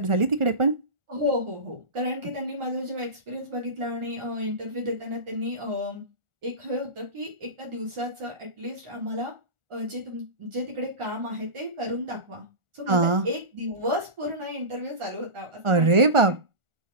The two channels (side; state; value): left; late; 1.4 ms